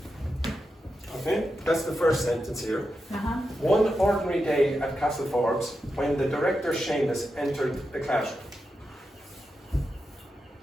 Okay, that's the first sentence here. One ordinary day at Castle Forbes, when the director Seamus entered the classroom.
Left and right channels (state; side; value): normal; both; correlation 0.88